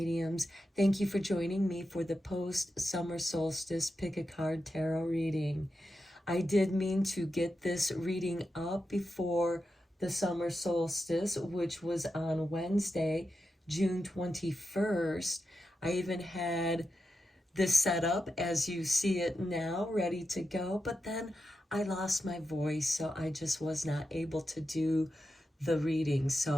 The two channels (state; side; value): normal; both; correlation 0.89